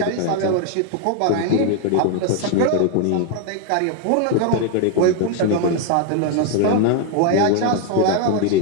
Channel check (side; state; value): both; different; correlation 0.01